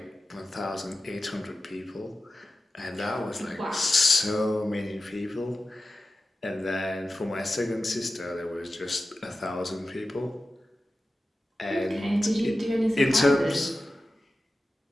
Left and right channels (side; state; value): both; normal; correlation 0.94